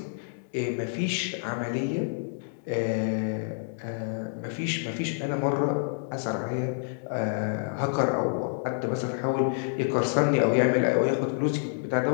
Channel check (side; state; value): right; silent; digital silence